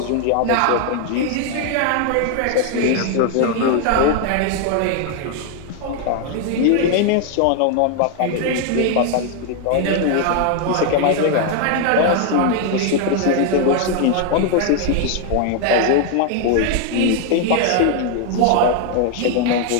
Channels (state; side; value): different; both; correlation 0.01